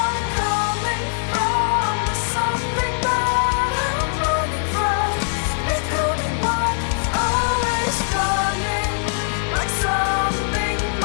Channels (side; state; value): right; silent; digital silence